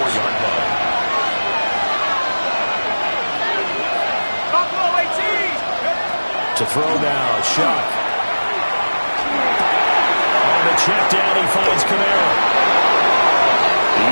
To throw now, Shock. On the check down, he finds Kamara.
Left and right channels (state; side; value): inverted; both; correlation -1.00